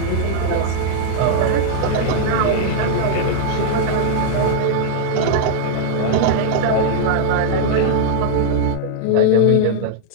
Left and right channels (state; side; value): different; both; correlation -0.01